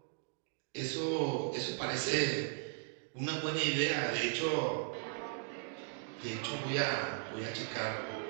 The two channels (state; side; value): silent; left; 53 dB below the other